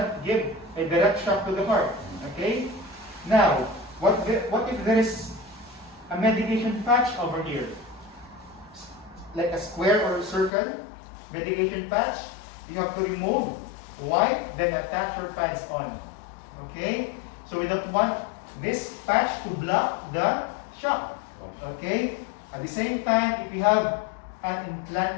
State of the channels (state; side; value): drops out; right; at 10.5 s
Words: give a direct shock to the heart. Okay? Now, what if there is a medication patch over here? Like a square or a circle, medication patch, you have to remove, wipe, then attach your pads on. Okay? So we don't want this patch to block the shock. Okay? At the same time, if you have an